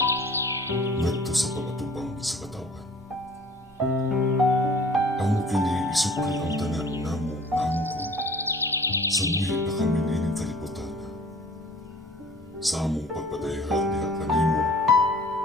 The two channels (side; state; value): both; normal; correlation 0.50